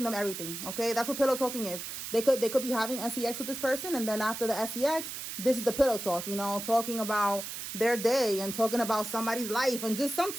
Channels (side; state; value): right; noise; hiss, 7 dB below the sound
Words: them everything. Okay, that's what pillow talking is. They could be having sex with this person, and then after the sex, this is the pillow talk. You know, talking about their day and talking about somebody's life and just some